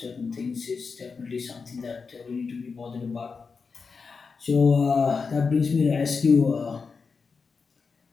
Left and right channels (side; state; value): right; quieter; 5.0 dB